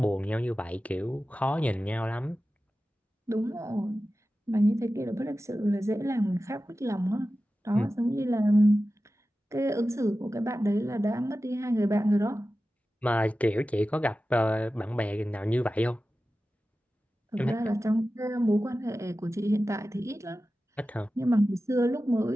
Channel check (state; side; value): normal; both; correlation 0.94